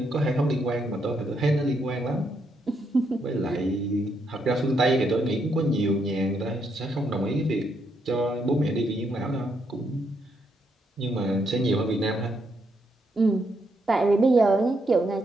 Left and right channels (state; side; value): normal; both; correlation 0.77